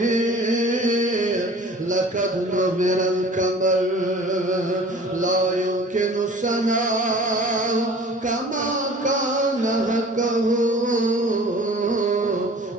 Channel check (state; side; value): normal; both; correlation 0.46